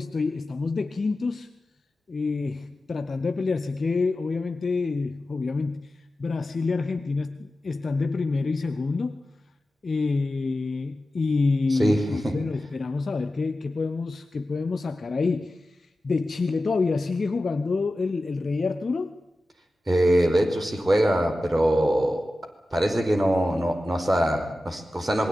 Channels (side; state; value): both; normal; correlation 0.94